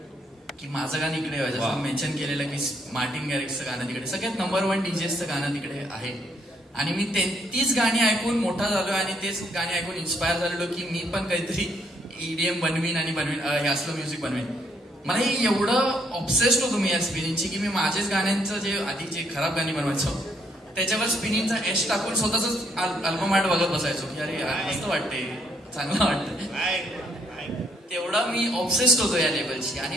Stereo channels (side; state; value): both; normal; correlation 0.70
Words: की माझं गाणं इकडे व्हायचं. जसं मेन्शन केलेलं की मार्टिन गॅरिक्सचं गाणं तिकडे, सगळ्यात नंबर 1 DJचं गाणं तिकडे आहे. आणि मी तीच गाणी ऐकून मोठा झालो आणि तेच गाणी ऐकून इन्स्पायर झालेलो की मी पण काहीतरी EDM बनवीन आणि हे असलं म्युझिक बनवीन. मला हे एवढं ऑब्सेस्ड होतो मी या स्पिनिंगची की मी माझेच गाण्यांचं जे आधी जे खराब गाणी बनवायचो त्याच्यावर स्पिनिंगचा एश टाकून स्वतःच अल्बम आर्ट बघत बसायचो की अरे मस्त वाटते, चांगलं वाटतं. तेवढा मी ऑब्सेस्ड होतो या लेवलची.